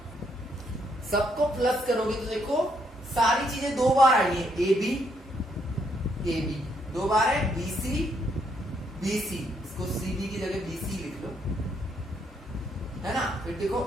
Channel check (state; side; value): normal; both; correlation 0.74